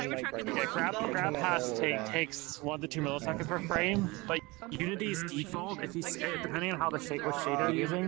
in the world? Grab pass takes 1 to 2 milliseconds per frame, but Unity's default, if you depending on how the shader you're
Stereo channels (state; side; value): quieter; left; 23.5 dB